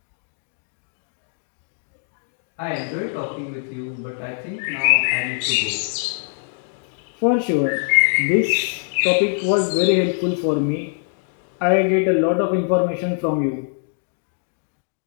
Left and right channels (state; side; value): silent; right; digital silence